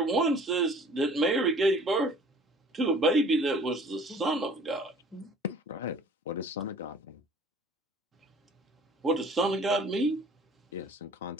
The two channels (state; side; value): normal; both; correlation 0.50